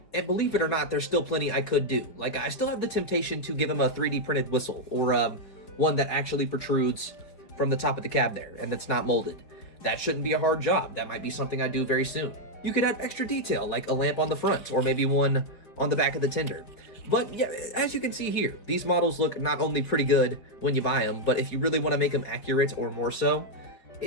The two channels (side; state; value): right; late; 5.1 ms